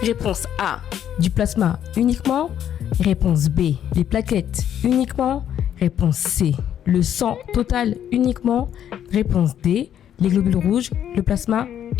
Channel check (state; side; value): quieter; right; 10.0 dB